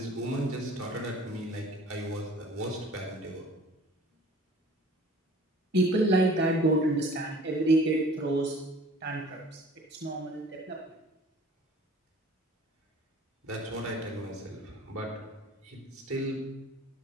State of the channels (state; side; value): normal; both; correlation 0.48